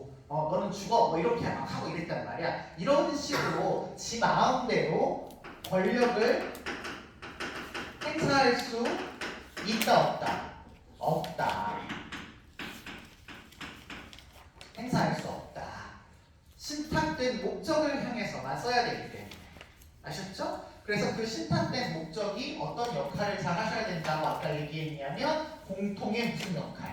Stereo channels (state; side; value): identical; both; correlation 1.00